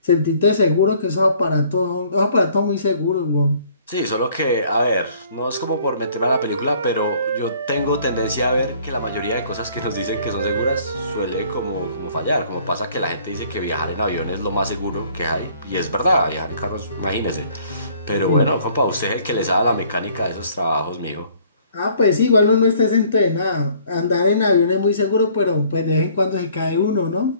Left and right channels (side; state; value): both; inverted; correlation -0.58